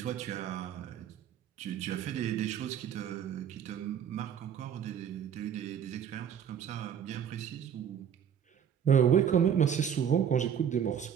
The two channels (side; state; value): left; quieter; 8.6 dB